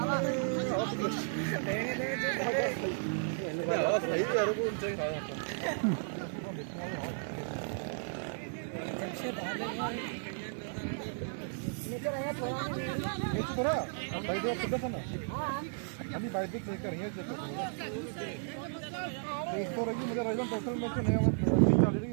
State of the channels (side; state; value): left; silent; 55 dB below the other